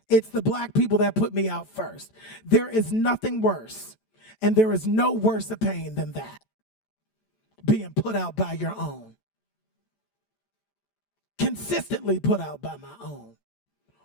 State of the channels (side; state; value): right; late; 14 ms